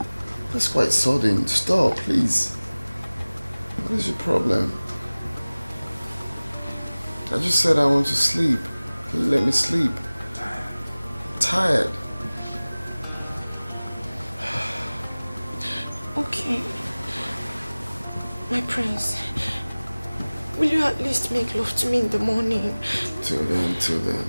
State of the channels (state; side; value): inverted; both; correlation -0.99